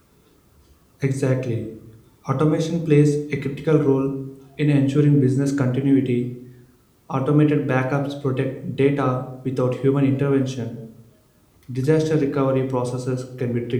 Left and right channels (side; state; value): both; identical; correlation 1.00